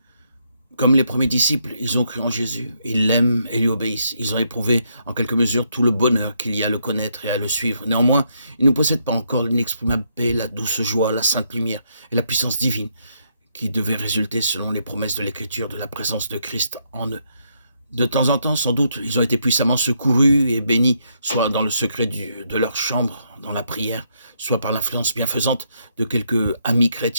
Comme les premiers disciples, ils ont cru en Jésus, ils l'aiment et lui obéissent. Ils ont éprouvé en quelque mesure tout le bonheur qu'il y a à le connaître et à le suivre. Néanmoins, ils ne possèdent pas encore l'inexprimable paix, la douce joie, la sainte lumière et la puissance divine qui devaient résulter selon les promesses de l'Écriture de la présence de Christ en eux. De temps en temps, sans doute, ils ont été puissamment secourus et bénis, soit dans le secret de leur chambre, dans la prière, soit par l'influence bienfaisante de quelques amis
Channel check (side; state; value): both; inverted; correlation -0.75